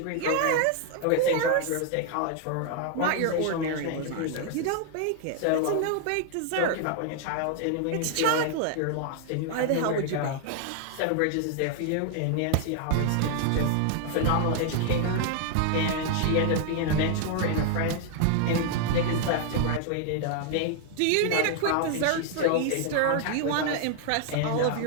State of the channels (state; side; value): different; both; correlation 0.00